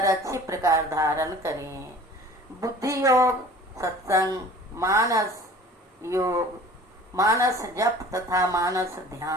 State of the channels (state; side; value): normal; both; correlation 0.45